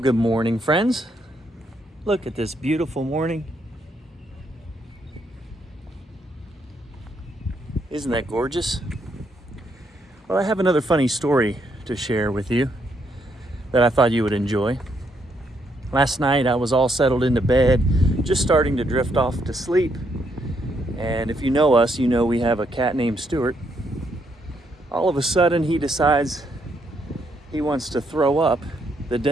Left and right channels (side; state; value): both; normal; correlation 0.75